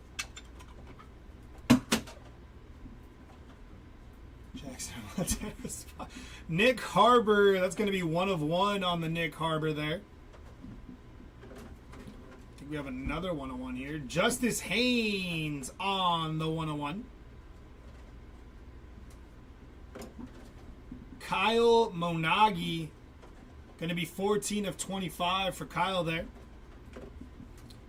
Jackson. Nick Harbor. That's going to be 1 of 1 on the Nick Harbor there. We have another 101 here. Justice Haynes on the 101. Kyle Monagi. Going to be 14 of 25 for Kyle there.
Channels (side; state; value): both; identical; correlation 1.00